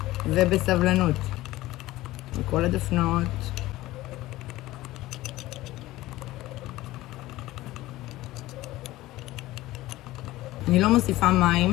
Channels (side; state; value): right; quieter; 17.1 dB